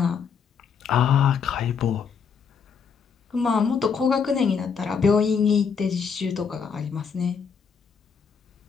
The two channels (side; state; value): right; quieter; 6.3 dB